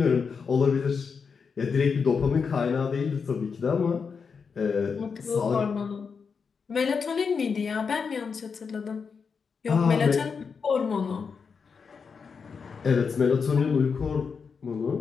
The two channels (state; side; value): quieter; right; 5.7 dB